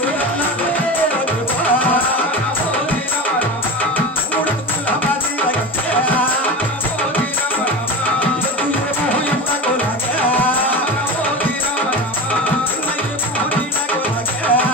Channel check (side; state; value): both; normal; correlation 0.27